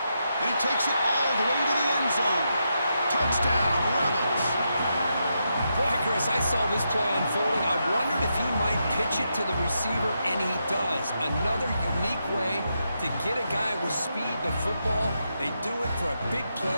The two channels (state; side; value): inverted; both; correlation -0.84